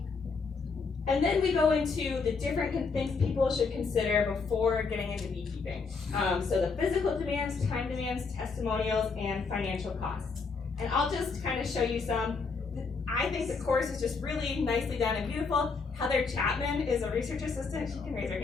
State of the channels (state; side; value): quieter; right; 4.7 dB